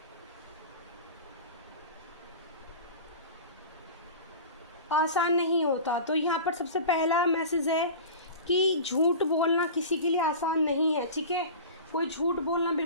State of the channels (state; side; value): inverted; both; correlation -0.34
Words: आसान नहीं होता। तो यहाँ पर सबसे पहला मैसेज है कि झूठ बोलना किसी के लिए आसान नहीं है, ठीक है, कोई झूठ बोलना